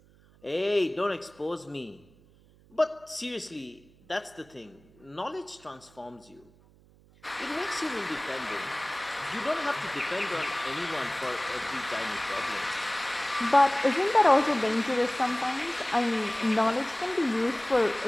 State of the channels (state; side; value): noise; right; hum, 28 dB below the sound